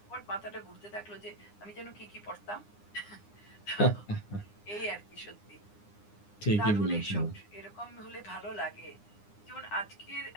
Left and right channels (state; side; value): late; right; 9.8 ms